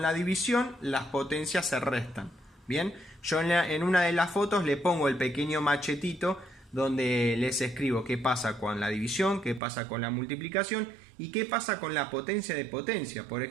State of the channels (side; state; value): left; drops out; at 9.6 s